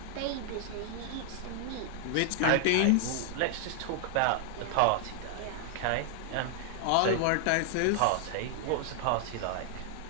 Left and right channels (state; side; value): different; both; correlation 0.00